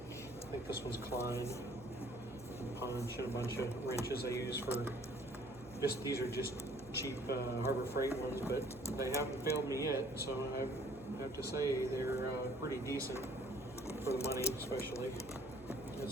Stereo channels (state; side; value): noise; right; hum, 19 dB below the sound